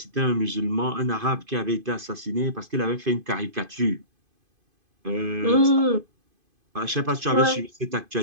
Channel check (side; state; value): left; late; 2.5 ms